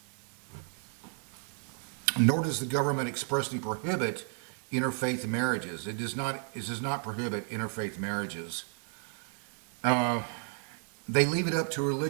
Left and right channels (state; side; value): quieter; left; 37.3 dB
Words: Nor does the government expressly prohibit interfaith marriages. It does not prohibit interfaith marriages. They leave it up to